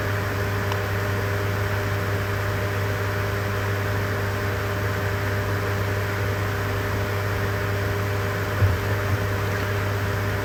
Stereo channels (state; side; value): identical; both; correlation 1.00